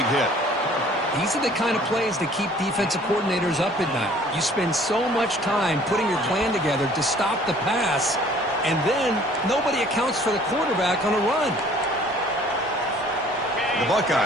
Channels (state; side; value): normal; both; correlation 0.54